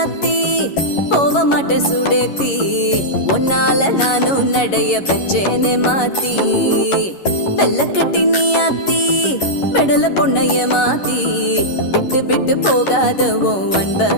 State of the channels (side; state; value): right; late; 11 ms